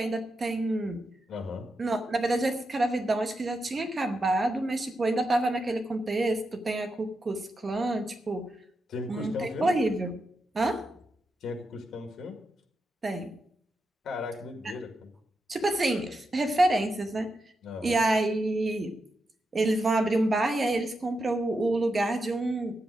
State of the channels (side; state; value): both; normal; correlation 0.86